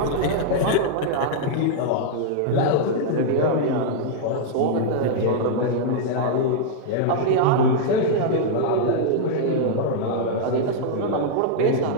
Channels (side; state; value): both; different; correlation -0.01